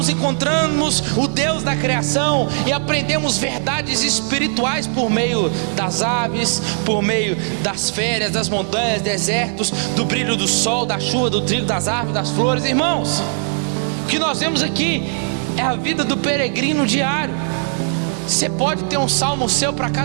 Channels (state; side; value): silent; left; 61 dB below the other